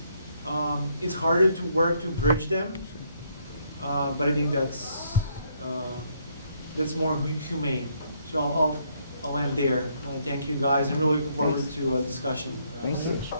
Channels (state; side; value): inverted; both; correlation -0.71